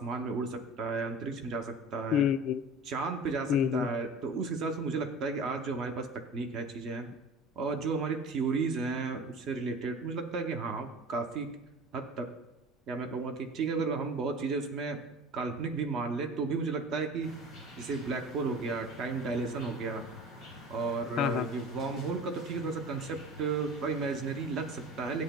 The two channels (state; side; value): normal; both; correlation 0.38